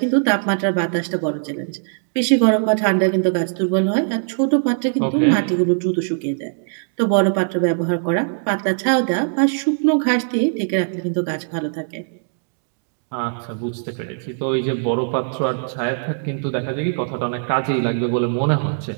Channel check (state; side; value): silent; left; digital silence